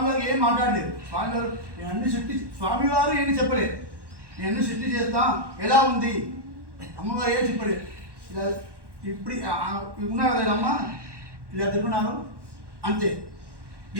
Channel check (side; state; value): left; late; 1.1 ms